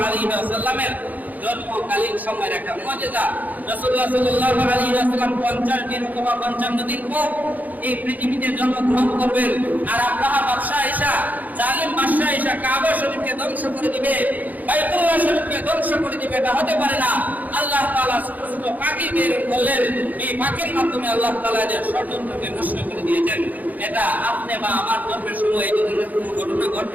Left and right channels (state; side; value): late; left; 0.080 ms